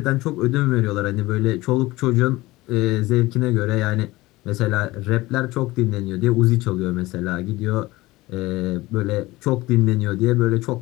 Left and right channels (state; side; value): quieter; right; 19.6 dB